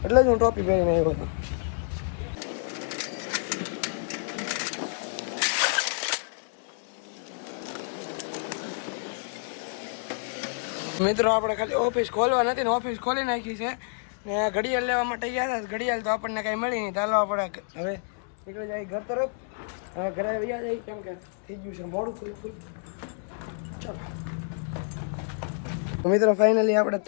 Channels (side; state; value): right; silent; digital silence